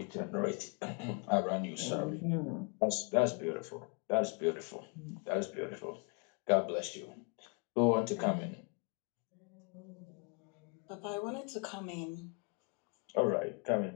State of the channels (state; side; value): quieter; right; 34.3 dB